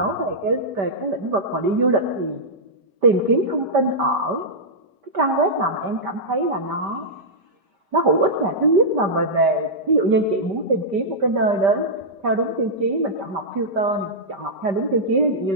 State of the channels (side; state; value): left; late; 5.1 ms